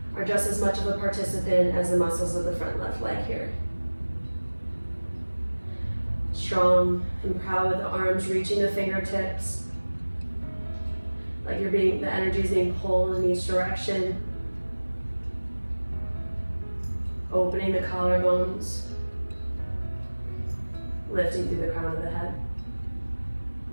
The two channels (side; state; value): both; inverted; correlation -1.00